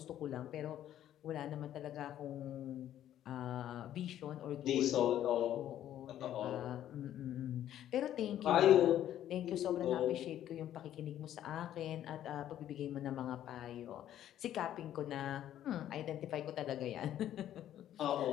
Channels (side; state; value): right; quieter; 11.6 dB